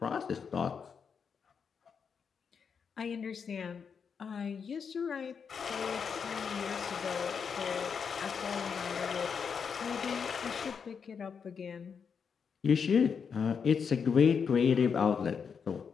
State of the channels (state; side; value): quieter; right; 6.4 dB